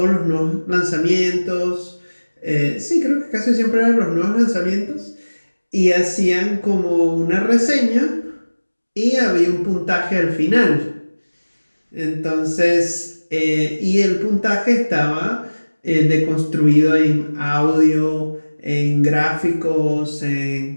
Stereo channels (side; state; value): both; inverted; correlation -1.00